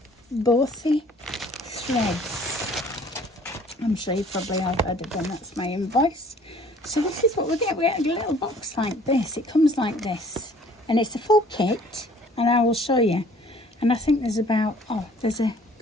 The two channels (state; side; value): normal; both; correlation 0.54